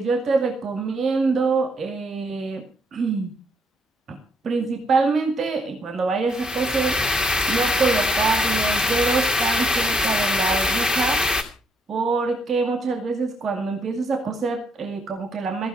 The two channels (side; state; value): both; normal; correlation 0.71